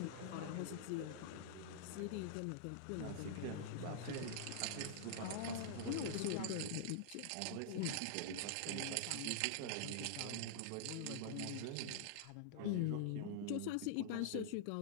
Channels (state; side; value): different; both; correlation -0.01